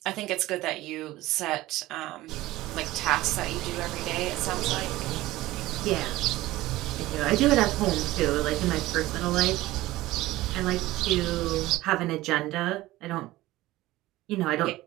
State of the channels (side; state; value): left; quieter; 17.4 dB